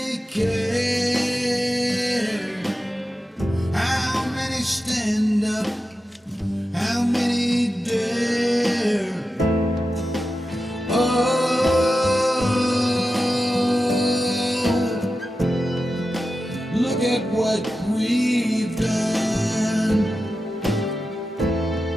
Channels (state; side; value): normal; both; correlation 0.92